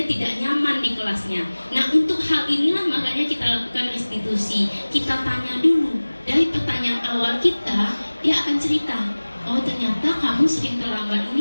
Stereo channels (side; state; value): both; inverted; correlation -1.00